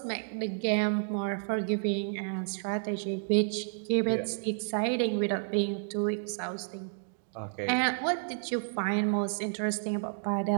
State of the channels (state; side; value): silent; left; digital silence